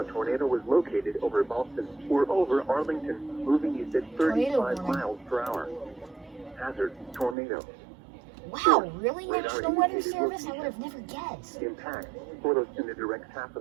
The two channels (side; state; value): left; drops out; at 7.4 s